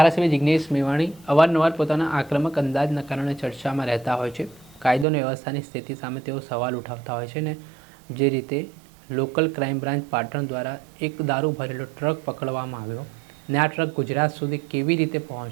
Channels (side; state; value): left; drops out; at 5.1 s